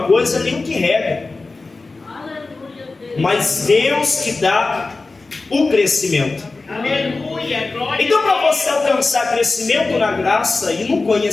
coisa, nem o que rega. Mas Deus que dá o crescimento. Aleluia, glória Então, a para Deus. você alcançar crescimento na graça e no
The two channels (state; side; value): quieter; right; 3.6 dB